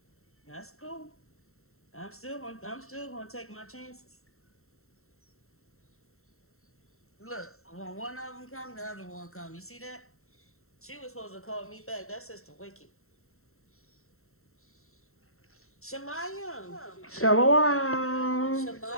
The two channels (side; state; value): right; late; 0.63 ms